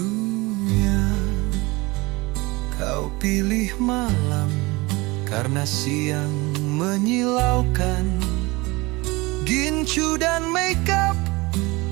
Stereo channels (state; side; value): quieter; left; 23.4 dB